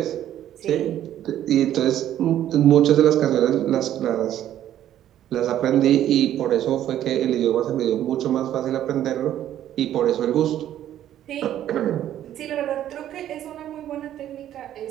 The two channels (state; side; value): quieter; left; 11.7 dB